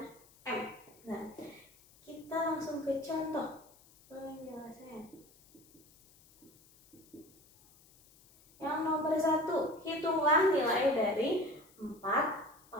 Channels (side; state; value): left; noise; hiss, 27 dB below the sound